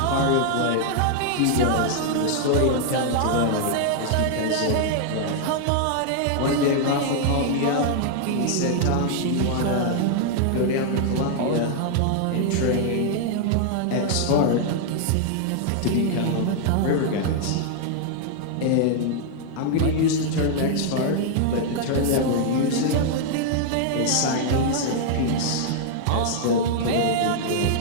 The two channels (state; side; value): different; both; correlation -0.01